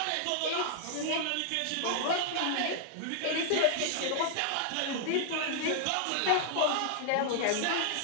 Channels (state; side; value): different; both; correlation -0.01